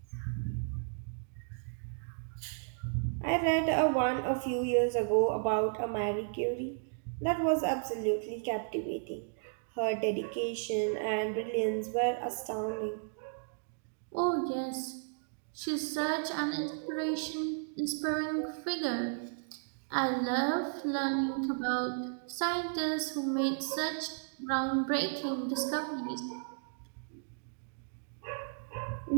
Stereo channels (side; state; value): left; silent; digital silence